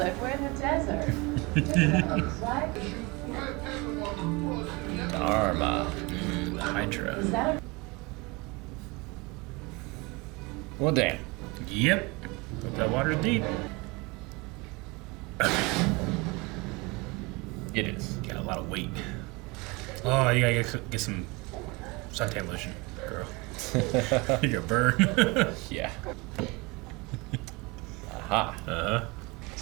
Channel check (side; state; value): left; quieter; 25.2 dB